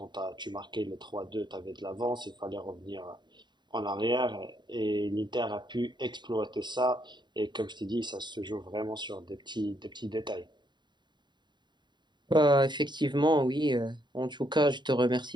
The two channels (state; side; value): late; left; 0.22 ms